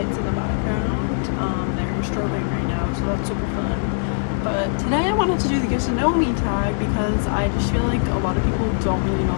in the background. They're strobing right now, so that's super fun. But today I wanted to do the get to know me tag because I just feel like a lot of people don't really know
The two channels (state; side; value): silent; right; digital silence